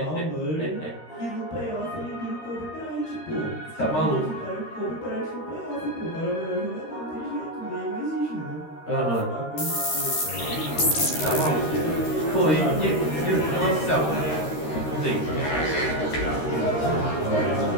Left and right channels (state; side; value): late; right; 13 ms